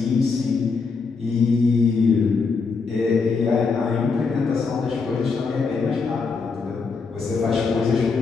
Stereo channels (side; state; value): right; quieter; 4.8 dB